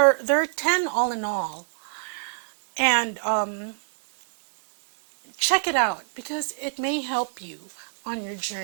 are 10 all in all, and check it out because it may help you on your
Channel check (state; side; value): silent; left; digital silence